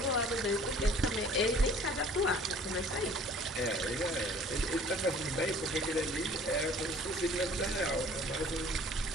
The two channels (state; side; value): normal; both; correlation 0.51